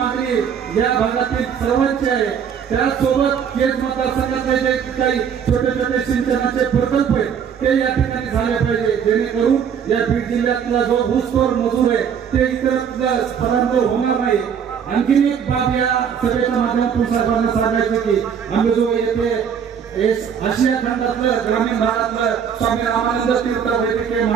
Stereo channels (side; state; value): left; quieter; 7.7 dB